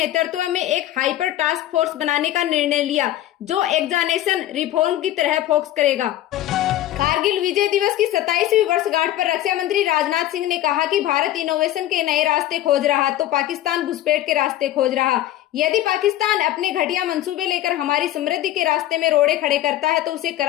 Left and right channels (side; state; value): right; quieter; 13.7 dB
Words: में एक हाइपर टास्क फोर्स बनाने का निर्णय लिया जो एग्जामिनेशन रिफॉर्म की तरह फोकस करेगा। कारगिल विजय दिवस की 27वीं वर्षगांठ पर रक्षा मंत्री राजनाथ सिंह ने कहा कि भारत इनोवेशन के नए रास्ते खोज रहा तो पाकिस्तान घुसपैठ के रास्ते खोज रहा। यदि पाकिस्तान अपने घटिया मंसूबे लेकर हमारी समृद्धि के रास्ते में रोड़े खड़े करता है तो उसे